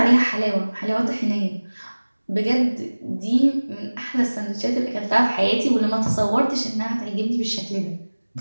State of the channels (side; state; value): both; inverted; correlation -1.00